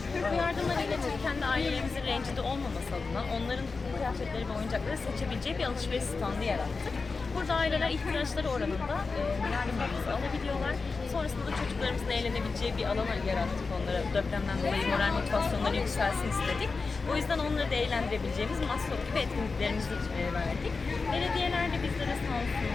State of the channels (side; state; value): right; quieter; 4.3 dB